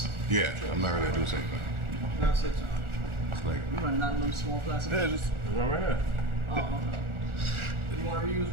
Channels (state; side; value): late; left; 1.4 ms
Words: Yeah, I'm not really a Douce fan. That's it. It's like You running out of them small plastic. Yeah, just run right here. Oh, okay. You want to reuse